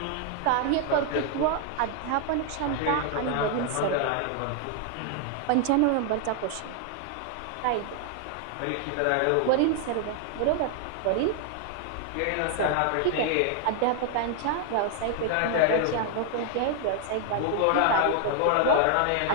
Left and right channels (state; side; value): different; both; correlation 0.00